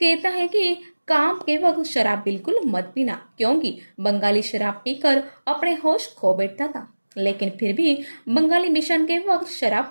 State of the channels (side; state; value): both; inverted; correlation -1.00